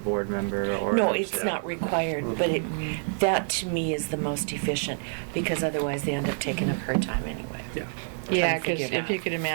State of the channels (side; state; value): left; silent; 60 dB below the other